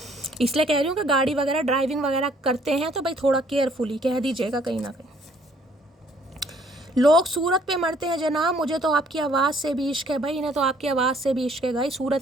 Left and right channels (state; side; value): normal; both; correlation 0.62